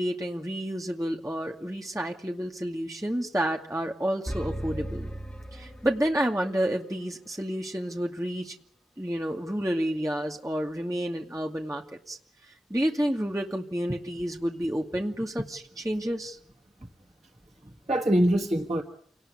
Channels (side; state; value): both; normal; correlation 0.91